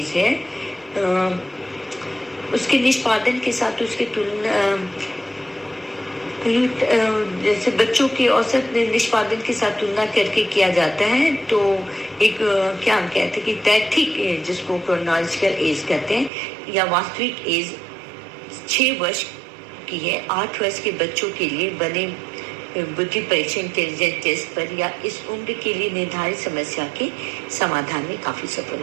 है उसके निष्पादन के साथ उसके तुलना जैसे बच्चों के औसत निष्पादन के साथ तुलना करके किया जाता है। तो एक क्या हम कहते हैं कि तैथिक एज जिसको क्रोनोलॉजिकल एज कहते हैं या वास्तविक एज 6 वर्ष की है। 8 वर्ष के बच्चों के लिए बने बुद्धि परीक्षण इंटेलिजेंस टेस्ट पर या इस उम्र के लिए निर्धारित समस्या के समाधान में काफी सफल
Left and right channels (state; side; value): drops out; left; at 16.3 s